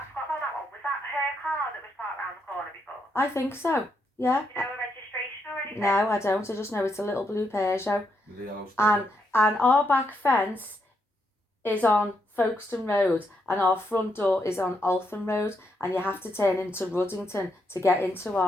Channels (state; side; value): normal; both; correlation 0.79